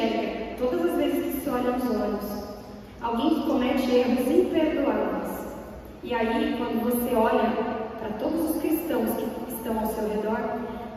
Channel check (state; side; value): identical; both; correlation 1.00